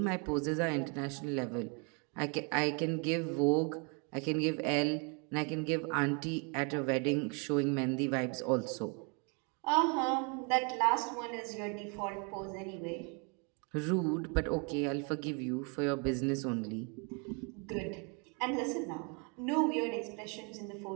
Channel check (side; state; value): left; quieter; 35.0 dB